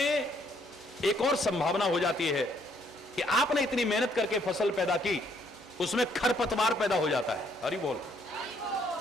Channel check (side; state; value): both; normal; correlation 0.68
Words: एक और संभावना हो जाती है कि आपने इतनी मेहनत करके फसल पैदा की, उसमें खरपतवार पैदा हो जाता है। हरि बोल,